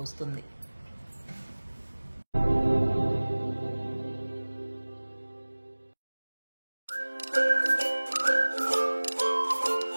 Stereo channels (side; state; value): both; inverted; correlation -1.00